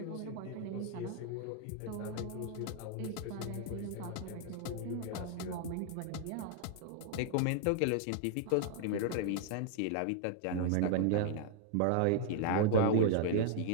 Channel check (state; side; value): different; both; correlation -0.01